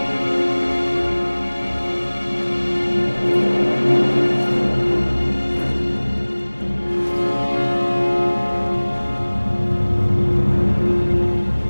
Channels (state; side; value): inverted; both; correlation -1.00